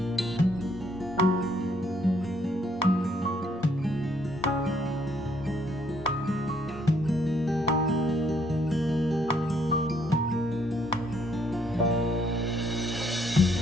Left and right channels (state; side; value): normal; both; correlation 0.68